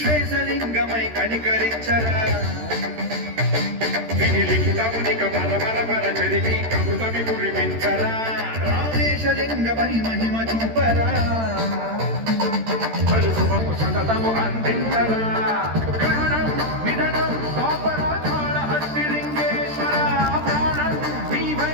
కనికరించరా విని లిఖితమునిక పర చదివి కమృతమి కురిపించరా రామేశలింగమై మహిమ చూపరా పలు శుభము సతతము అందించరా గ్రహణం నిధనం పాపరాచాల హస్తి లింగేశ్వర ప్రాణం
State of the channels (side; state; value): left; late; 13 ms